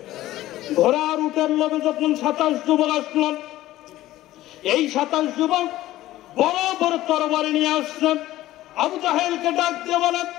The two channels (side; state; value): right; quieter; 15.4 dB